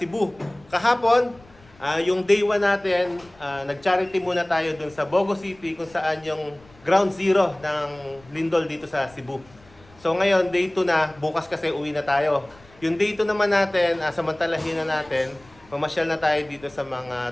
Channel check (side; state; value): left; noise; rumble, 27 dB below the sound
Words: Kahapon, yung day 1 natin, nag-charity muna tayo dun sa Bogo City kung saan yung ground zero ng lindol dito sa Cebu. So ngayon, day 2 na, bukas kasi uwi na tayo. Yung day 2 naman natin, samantalahin na natin, mamasyal na tayo dito sa